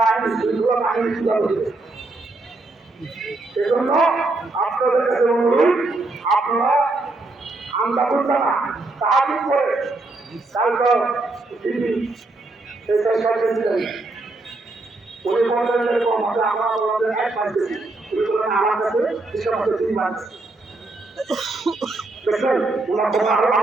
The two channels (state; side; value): quieter; left; 3.1 dB